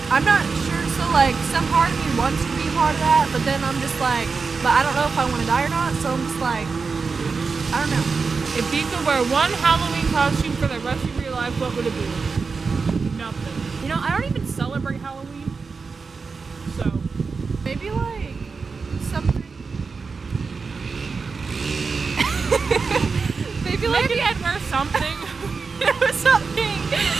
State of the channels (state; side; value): quieter; left; 4.8 dB